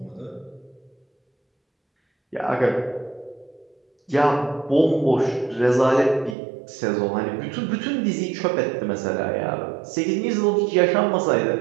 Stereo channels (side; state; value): left; drops out; at 6.4 s